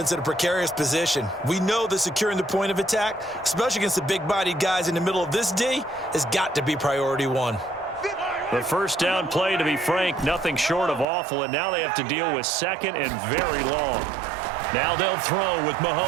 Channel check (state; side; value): drops out; left; at 11.1 s